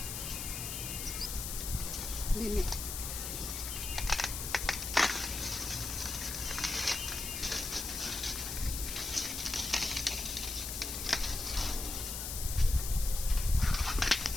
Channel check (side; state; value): left; noise; hiss, 4 dB below the sound